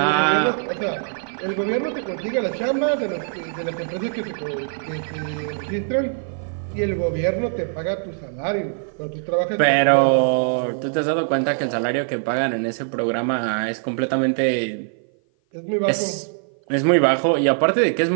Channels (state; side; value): silent; left; 56 dB below the other